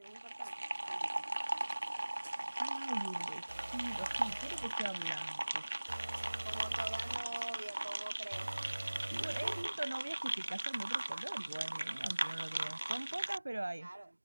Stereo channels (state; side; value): inverted; both; correlation -1.00